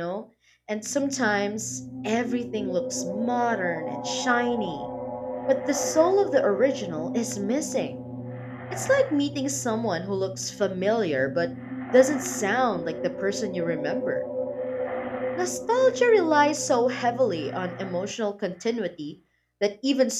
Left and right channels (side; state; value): both; identical; correlation 1.00